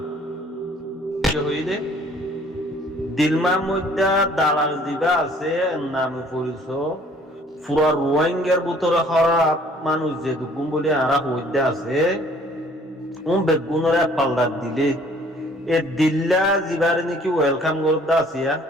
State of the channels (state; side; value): normal; both; correlation 0.57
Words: হইলে দিলমার মধ্যে দালাল দিবা আছে নামে পরিচ পুরা রোহিঙ্গার ভিতরে খারাপ মানুষ যে দুগুম বলে আরা হইতে আছে বেগুনরে পাল্লার দিলে এ দিল্লা জিবারে নাকি ওয়েলকাম করতে আসিয়া